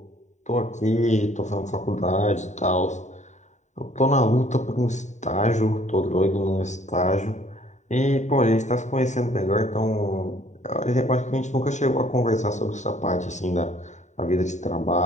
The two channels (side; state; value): right; late; 0.34 ms